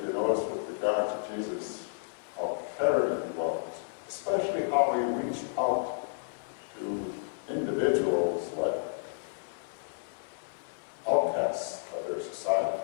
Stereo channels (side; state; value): right; silent; 57 dB below the other